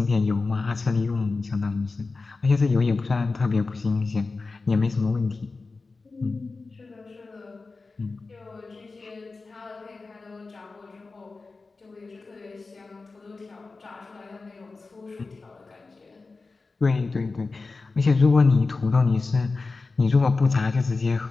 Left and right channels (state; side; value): quieter; right; 3.9 dB